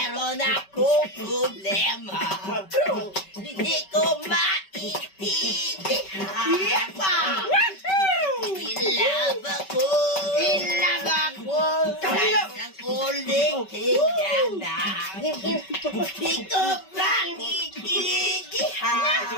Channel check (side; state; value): right; late; 5.2 ms